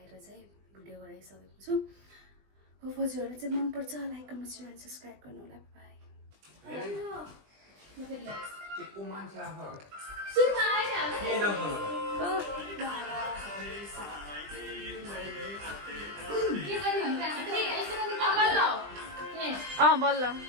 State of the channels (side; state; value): left; late; 20 ms